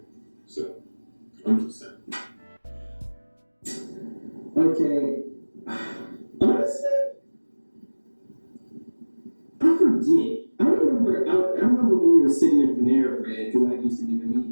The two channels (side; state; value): both; inverted; correlation -1.00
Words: So, I'm just saying. Okay. Honestly, I forget. I remember when we were sitting in Panera Bread, because I used to be the